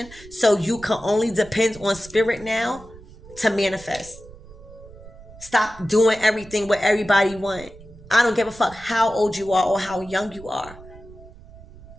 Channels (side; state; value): right; noise; rumble, 19 dB below the sound